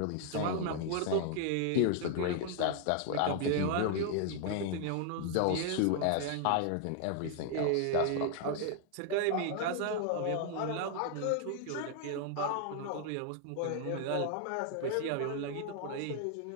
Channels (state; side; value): different; both; correlation 0.00